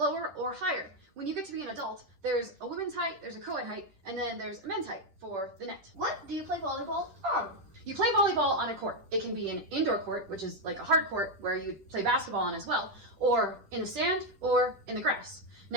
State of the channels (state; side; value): late; left; 10 ms